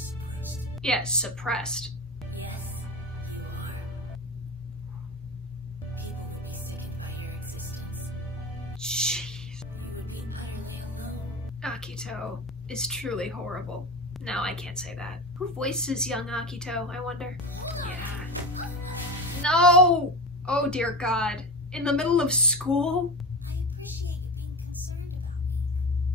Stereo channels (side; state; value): both; normal; correlation 0.25